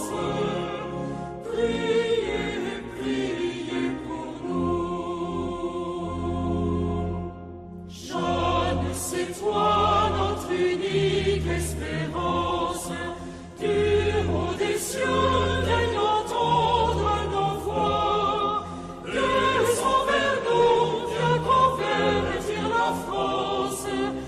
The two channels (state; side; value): identical; both; correlation 1.00